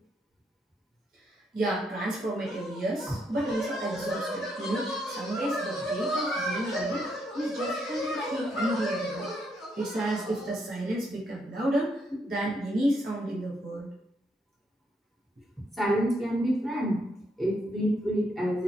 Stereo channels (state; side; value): normal; both; correlation 0.76